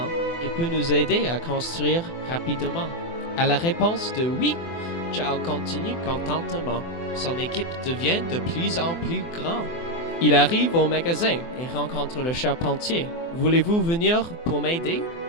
Il peut nous aider à construire rapidement. À la réponse de oui, Charles continue contentement. Son équipe devient de plus en plus grande. Il arrive au magasin et rencontre le charpentier. Voulez-vous venir pour m'aider?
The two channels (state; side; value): late; right; 24 ms